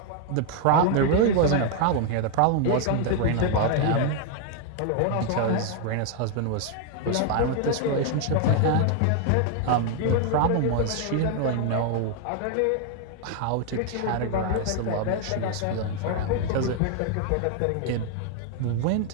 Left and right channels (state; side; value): different; both; correlation 0.00